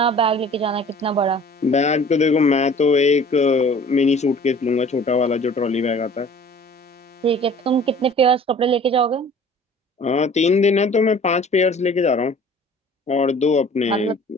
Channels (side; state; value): both; normal; correlation 0.48